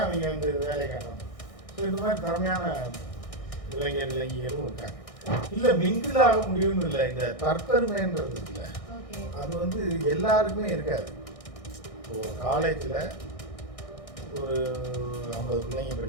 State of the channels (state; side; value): late; right; 1.6 ms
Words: அவங்க வந்து வேலையை காட்டணும். ஸோ இந்த மாதிரி திறமையான இளைஞர்களும் இருக்காங்க. இல்லை மிங்கிள் ஆக முடியும்னு இல்லை, இந்த தற்பெருமைன்றது இல்லை, அது வந்து எல்லாருக்குமே இருக்காது. ஒரு காலேஜில் ஒரு 50 பிள்ளைங்க